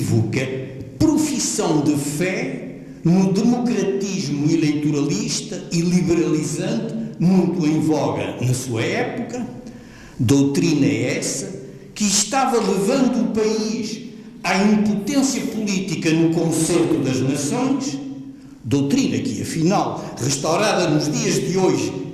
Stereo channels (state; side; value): identical; both; correlation 1.00